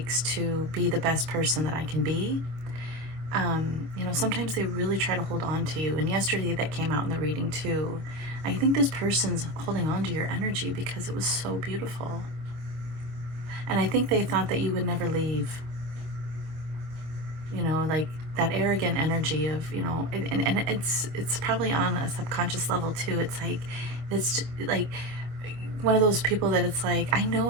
to be the best person that I can be. You know, sometimes they really try to hold on to you. And yesterday that came out in the reading too. I think this person's holding on to your energy because it was so beautiful. And I think they thought that you would never leave. You know, like that arrogant energy of, you know, and it's probably on a subconscious level too. It's like one of those people that it's like, I know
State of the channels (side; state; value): left; late; 25 ms